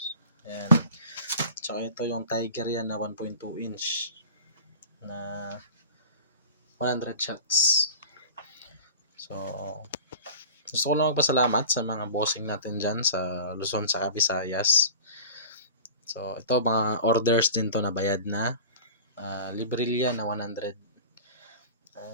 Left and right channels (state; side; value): inverted; both; correlation -0.38